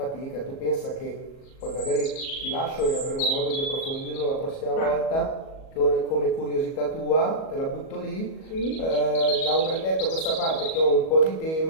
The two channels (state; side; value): late; right; 37 ms